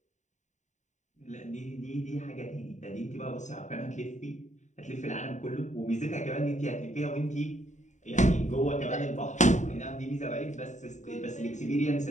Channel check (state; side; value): late; right; 0.35 ms